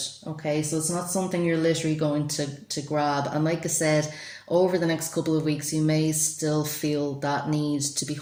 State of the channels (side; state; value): both; identical; correlation 1.00